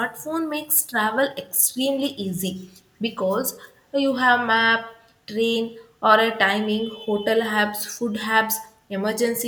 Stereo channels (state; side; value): identical; both; correlation 1.00